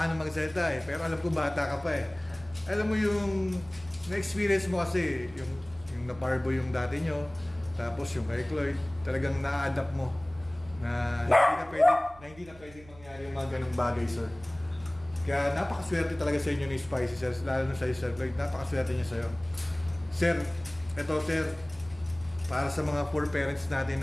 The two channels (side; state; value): right; noise; hum, 21 dB below the sound